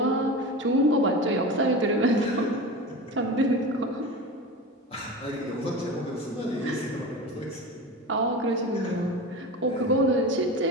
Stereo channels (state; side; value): normal; both; correlation 0.28